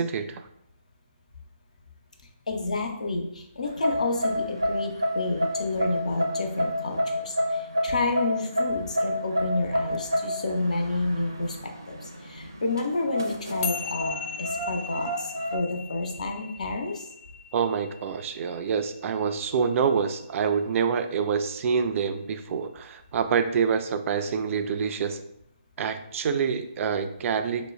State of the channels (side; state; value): both; inverted; correlation -0.67